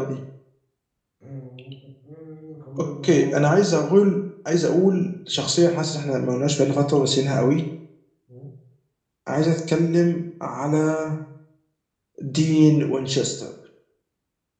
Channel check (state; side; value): identical; both; correlation 1.00